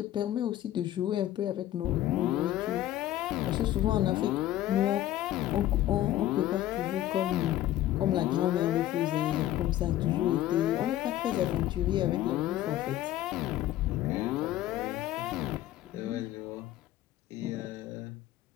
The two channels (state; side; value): quieter; right; 13.6 dB